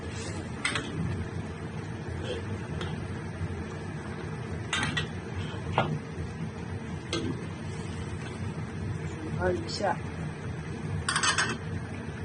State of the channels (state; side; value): identical; both; correlation 1.00